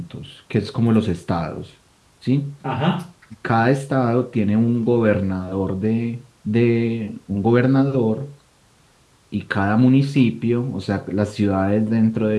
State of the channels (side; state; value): both; identical; correlation 1.00